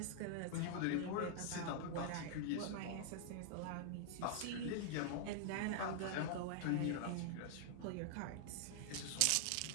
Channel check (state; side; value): different; both; correlation -0.01